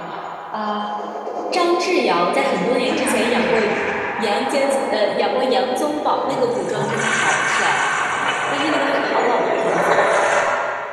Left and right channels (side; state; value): both; identical; correlation 1.00